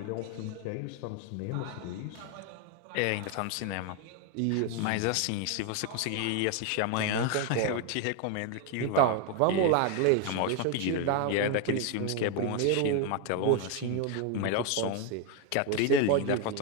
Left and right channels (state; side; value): different; both; correlation 0.01